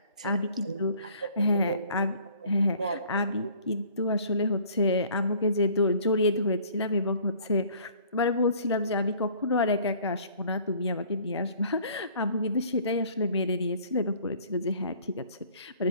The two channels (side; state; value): both; inverted; correlation -0.54